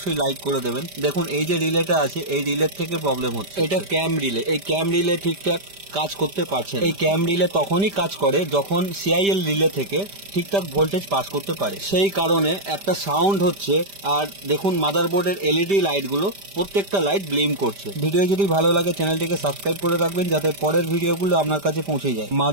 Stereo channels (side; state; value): left; late; 5.1 ms